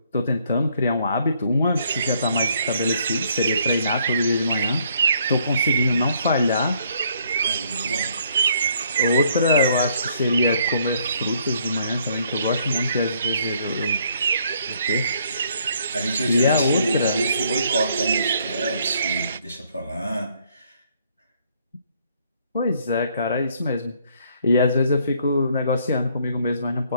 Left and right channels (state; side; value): inverted; both; correlation -0.67